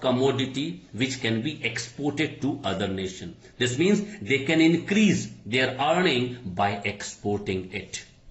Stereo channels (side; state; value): both; identical; correlation 1.00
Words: which can be exported to other nation. This means they can increase their earning by exporting it.